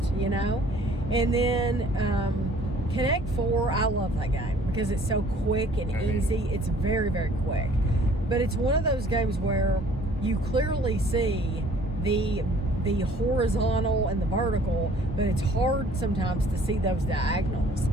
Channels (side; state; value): both; normal; correlation 0.55